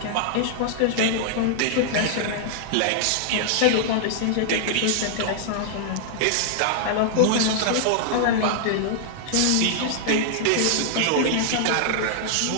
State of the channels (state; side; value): different; both; correlation -0.01